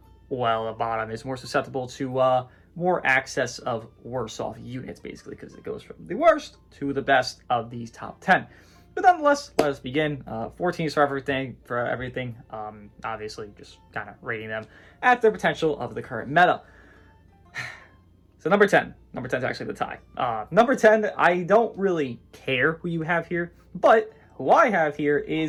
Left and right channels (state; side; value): identical; both; correlation 1.00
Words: well, the bottom is more susceptible to more access of worse off units, basically, because it goes from the worst to the best of these top 10. But nonetheless, let us begin. 14 for everything. Obviously, just kind of rating them at their potential of the current meta. So number 10. Number 10 is actually the tie. Number 10, I don't really care who you have here, but who I have here